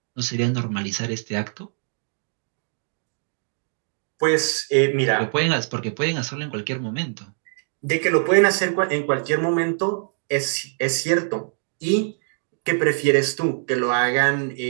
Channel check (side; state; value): left; silent; digital silence